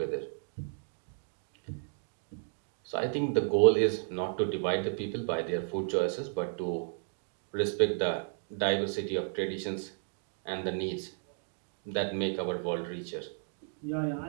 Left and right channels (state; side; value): silent; left; digital silence